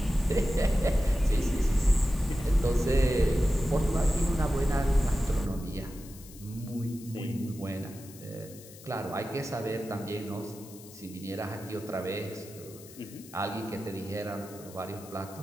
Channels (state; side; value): noise; left; hiss, 19 dB below the sound